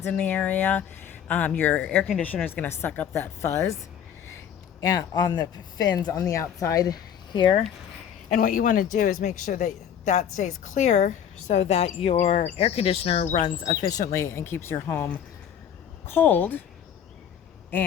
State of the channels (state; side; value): quieter; right; 8.9 dB